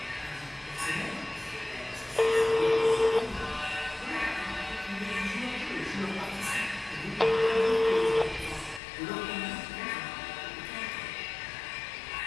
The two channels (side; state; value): right; drops out; at 8.8 s